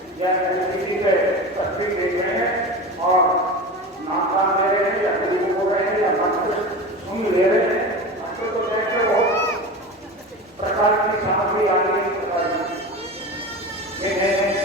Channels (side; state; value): both; normal; correlation 0.29